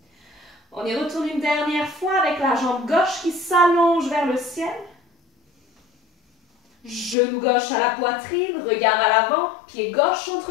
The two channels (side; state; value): right; drops out; at 7.2 s